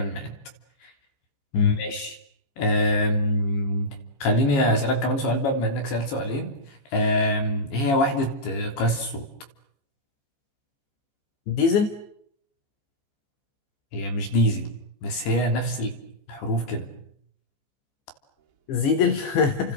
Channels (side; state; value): right; late; 15 ms